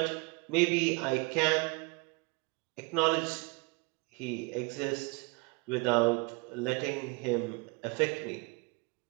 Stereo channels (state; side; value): quieter; left; 29.3 dB